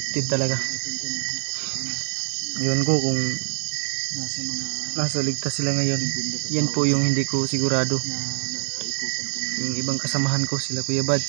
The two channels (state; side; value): silent; left; digital silence